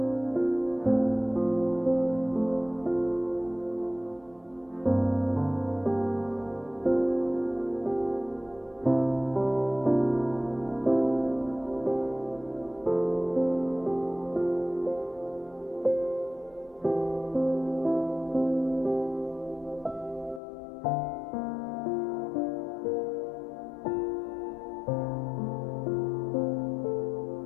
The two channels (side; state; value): right; drops out; at 20.4 s